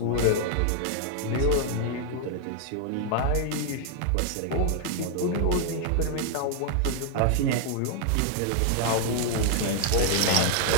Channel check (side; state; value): both; different; correlation 0.00